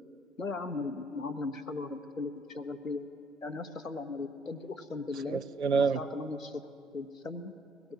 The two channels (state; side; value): normal; both; correlation 0.64